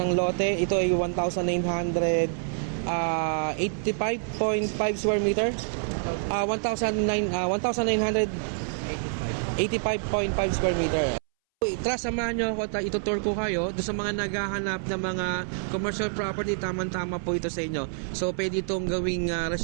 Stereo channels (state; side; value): silent; left; 60 dB below the other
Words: lote, ito ay 1,985.5 square meter, 1,985.5 square meter. Tara, samahan nyo ako at itutour ko kayo doon sa mga naghahanap ng mga commercial property. Tama-tama po ito sa inyo. So pwede itong gawing